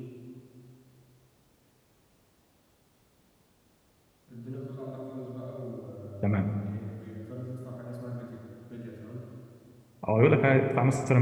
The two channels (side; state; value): both; identical; correlation 1.00